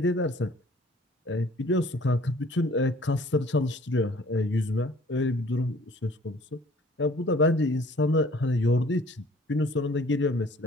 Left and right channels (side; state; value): both; normal; correlation 0.53